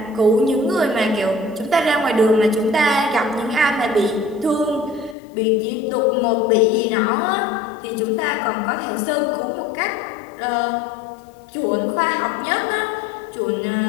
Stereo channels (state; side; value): drops out; right; at 5.2 s